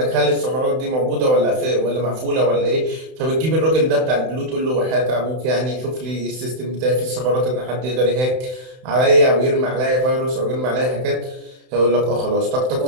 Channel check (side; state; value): left; late; 31 ms